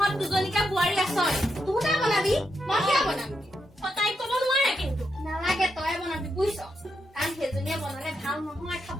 দুজনীকা বোৱাৰী আছ তহঁতে বনাবি মই কিয় বনাম তাইক ক'ব নোৱাৰে কিন্তু নালাগে তই বনাবি বুজিছ কাৰণ সেইজনীয়ে বনালে ভাল নহয়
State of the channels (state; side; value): normal; both; correlation 0.83